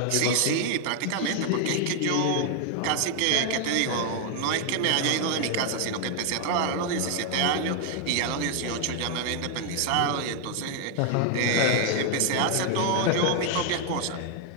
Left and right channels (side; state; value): both; different; correlation 0.00